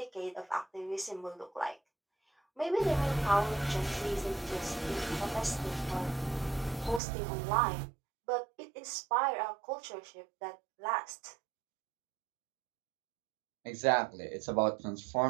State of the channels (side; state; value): left; drops out; at 7.0 s